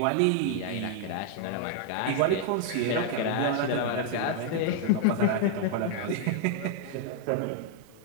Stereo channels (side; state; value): both; different; correlation 0.00